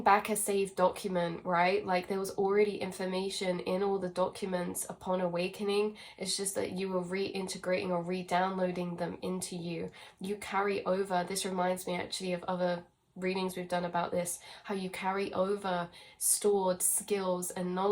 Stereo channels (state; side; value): identical; both; correlation 1.00